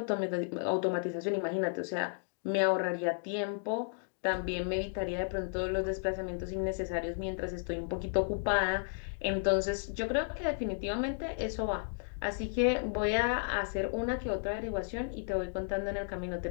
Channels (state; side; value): silent; right; digital silence